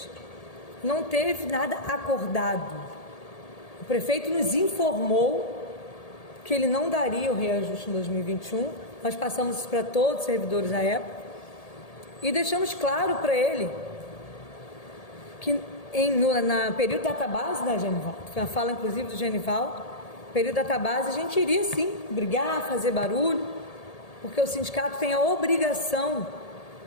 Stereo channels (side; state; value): right; late; 1.8 ms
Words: Não teve nada acordado. O prefeito nos informou que ele não daria o reajuste em 2021, nós passamos isso para todos os servidores da época e deixamos claro para ele que no período da database, Genivaldo, foi uma fala inclusive do Genivaldo, período da database a gente iria sim brigar, fazer barulho, porque o sindicato tem a obrigação